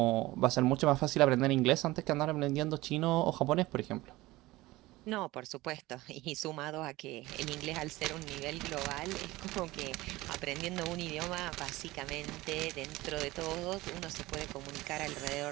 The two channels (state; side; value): quieter; left; 19.2 dB